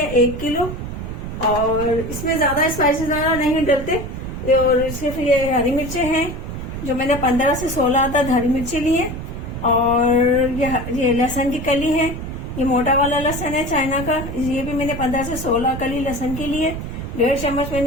1 किलो। और इसमें ज्यादा स्पाइसेस ज्यादा नहीं डलते। और सिर्फ ये हरी मिर्चें हैं जो मैंने 15 से 16 तक हरी मिर्ची ली है। और ये लहसुन की कली है। ये मोटा वाला लहसुन है चाइना का, ये भी मैंने 15 से 16 कली लहसुन की ली है। 1.5 चम्मच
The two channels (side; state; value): right; noise; rumble, 7 dB below the sound